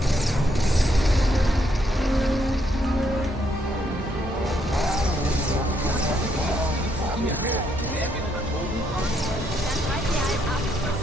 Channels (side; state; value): both; normal; correlation 0.74